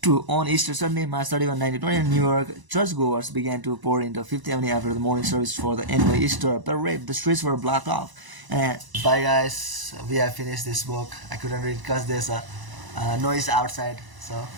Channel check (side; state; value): left; late; 1.0 ms